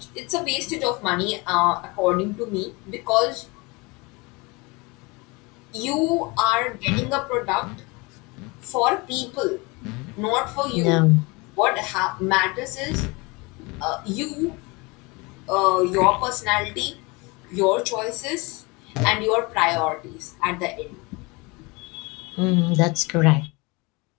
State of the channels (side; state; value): right; quieter; 26.4 dB